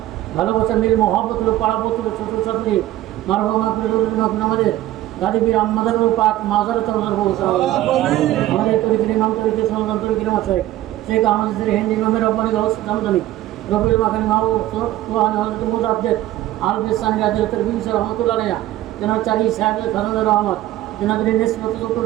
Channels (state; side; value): quieter; left; 14.8 dB